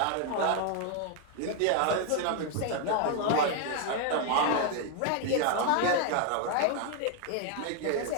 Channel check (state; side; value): different; both; correlation 0.00